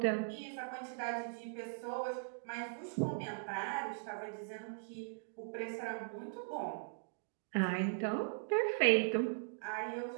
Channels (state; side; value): silent; left; digital silence